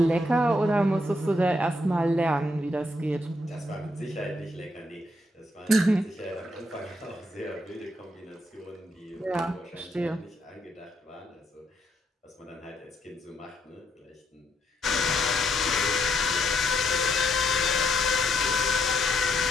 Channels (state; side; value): normal; both; correlation 0.76